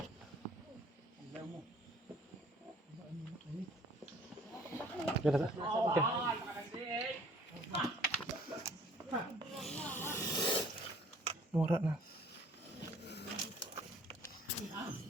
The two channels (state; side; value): normal; both; correlation 0.55